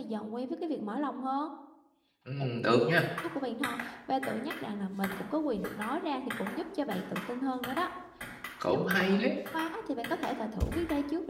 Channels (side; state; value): both; identical; correlation 1.00